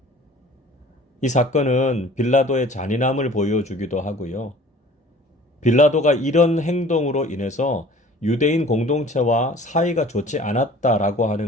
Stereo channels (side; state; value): both; normal; correlation 0.48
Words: 이 사건은 빌라도의 잔인함을 보여주기도 하고요. 빌라도가 이런 행동으로 인해서 유대인 공동체와 사이가 좋지 않았다라고